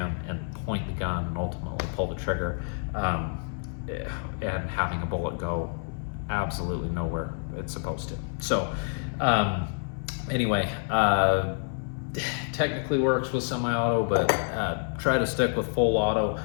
and point the gun and ultimately pull the trigger, and having a bullet go absolutely nowhere it's supposed to. So anyway, technically works with semi-auto, but try to stick with full auto.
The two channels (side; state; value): right; silent; 59 dB below the other